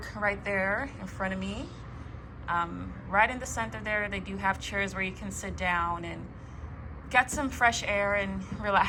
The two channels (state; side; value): identical; both; correlation 1.00